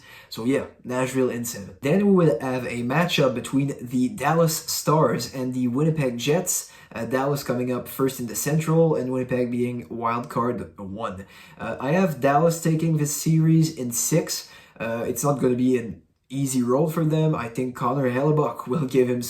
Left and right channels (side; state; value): both; identical; correlation 1.00